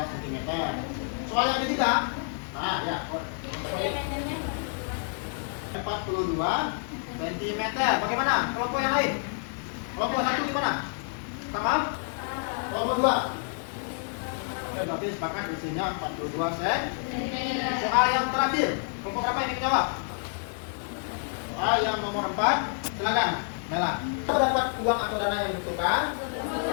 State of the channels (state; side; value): silent; right; 59 dB below the other